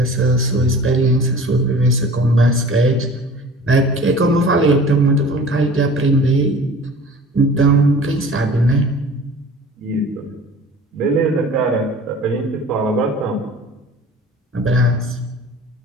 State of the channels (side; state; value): both; normal; correlation 0.43